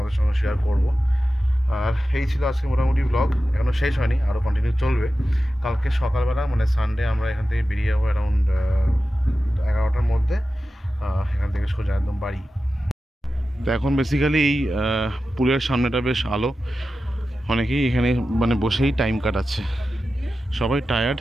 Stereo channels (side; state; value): both; normal; correlation 0.93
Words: সঙ্গে শেয়ার করবো। আর এই ছিল আজকে মোটামুটি ব্লগ, এখনও শেষ হয়নি, আরও কন্টিনিউ চলবে। কালকে সকালবেলা মানে সানডে আমরা এখান থেকে বেরিয়ে যাবো অ্যারাউন্ড 11টার মধ্যে, এখান থেকে সোজা একদম বাড়ি। তো এখন বেসিক্যালি এই পুলের সামনেটা বেশ আলো, অনেকেই এখানে মানে বসেই টাইম কাটাচ্ছে। সবাই টায়ার্ড,